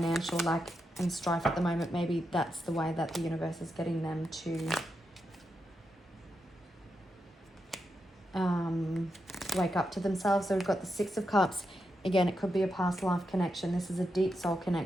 lack and strife at the moment. Maybe that's the way that the universe is getting them to wake up to themselves. So we've got the 6 of Cups Again, it could be a past life connection. This is a deep soul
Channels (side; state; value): both; normal; correlation 0.86